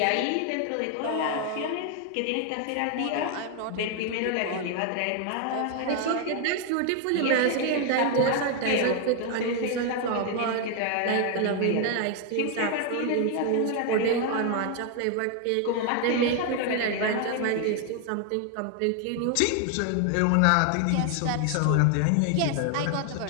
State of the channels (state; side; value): different; both; correlation 0.01